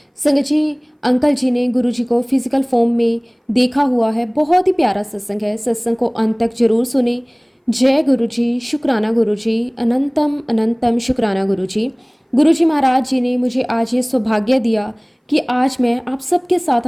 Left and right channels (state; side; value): identical; both; correlation 1.00